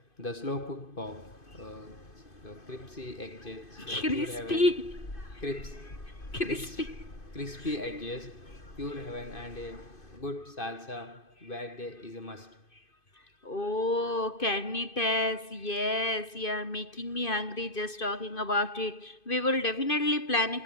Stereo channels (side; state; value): right; late; 2.5 ms